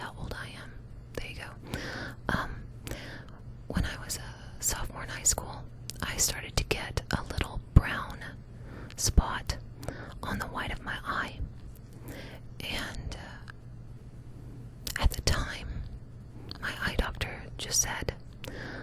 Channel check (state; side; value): identical; both; correlation 1.00